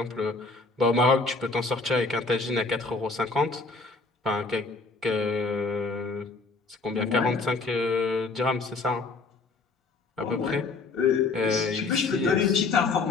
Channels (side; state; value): right; quieter; 3.9 dB